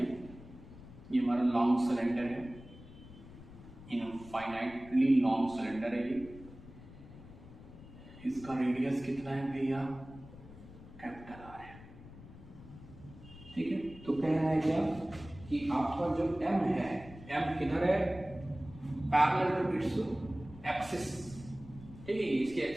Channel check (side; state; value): left; noise; rumble, 17 dB below the sound